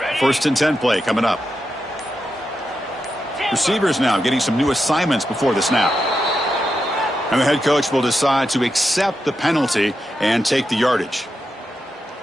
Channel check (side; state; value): both; normal; correlation 0.87